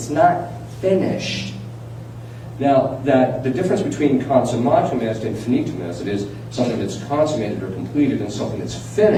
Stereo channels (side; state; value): both; identical; correlation 1.00